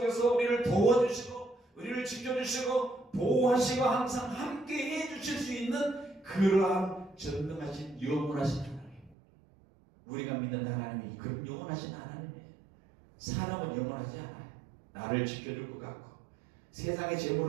우리를 도와주시고 우리를 지켜주시고 보호하시고 항상 함께 해주실 수 있는 그러한 전능하신 영원하신 하나님, 우리가 믿는 하나님이 그런 영원하신 하나님이에요. 사람은 영원하지 않아요. 나를 지켜줄 것 같고 세상의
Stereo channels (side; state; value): left; drops out; at 9.2 s